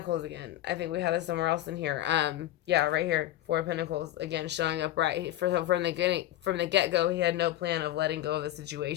again. I think we have this somewhere else in here. Yeah, right here. Four of Pentacles again showing up right from the get go. He had no plan of letting go of the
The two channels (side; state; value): right; quieter; 13.9 dB